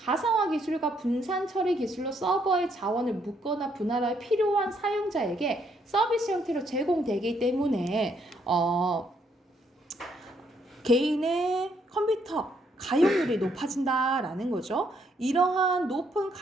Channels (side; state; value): both; normal; correlation 0.72